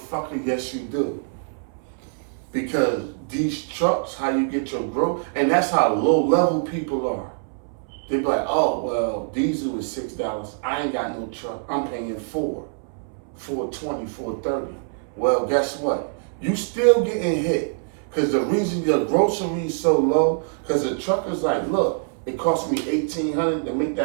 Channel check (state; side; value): silent; left; 63 dB below the other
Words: yes you do. Because these trucks, how you get your growth, and that's how low-level people are. They be like, oh, well, diesel is $6. I ain't got no truck. I'm paying $4.20, $4.30. Well, guess what? You still getting hit. Because the reason your grocery is so low, because the trucker's like, look, it cost me $1,800 to make